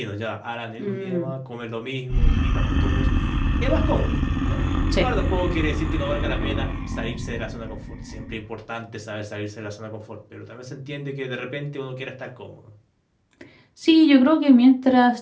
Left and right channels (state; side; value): identical; both; correlation 1.00